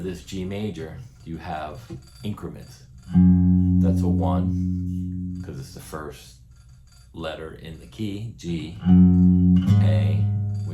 this G major, you have increments. That's a 1, because it's the first letter in the key, G, A,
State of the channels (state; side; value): identical; both; correlation 1.00